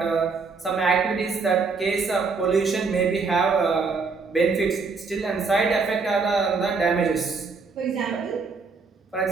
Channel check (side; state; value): left; quieter; 4.6 dB